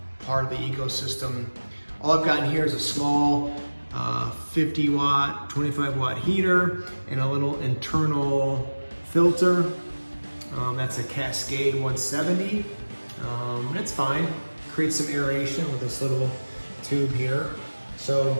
part of the ecosystem. All I've got in here is a small 50 watt, 25 watt heater and a little internal filter. That's a Cascade 170. It's fine. Creates some aeration with this little tube here.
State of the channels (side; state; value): both; inverted; correlation -1.00